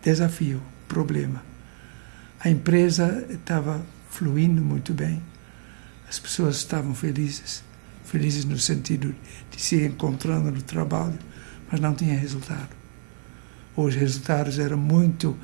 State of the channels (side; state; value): left; silent; digital silence